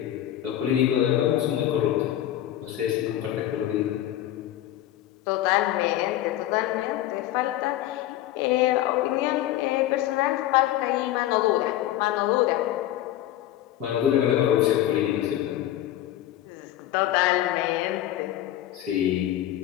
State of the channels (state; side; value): quieter; right; 13.2 dB